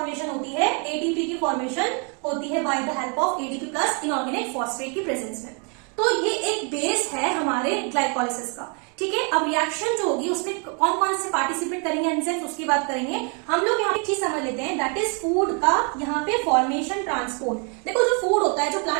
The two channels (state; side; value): quieter; left; 36.6 dB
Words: होती है, एटीपी की फॉर्मेशन होती है by the help of ADP plus inorganic phosphate की प्रेजेंस में। तो ये एक बेस है हमारे ग्लाइकोलाइसिस का, ठीक है। अब रिएक्शन जो होगी उसमें कौन कौन से पार्टिसिपेट करेंगे एंजाइम्स, उसकी बात करेंगे। हम लोग यहाँ पे चीज समझ लेते हैं, दैट इज फूड का यहाँ पे फॉर्मेशन ट्रांसपोर्ट। देखो जो फूड होता है, जो